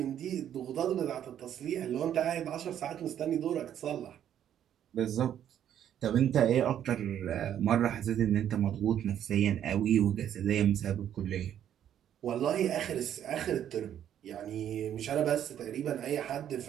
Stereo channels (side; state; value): left; quieter; 10.2 dB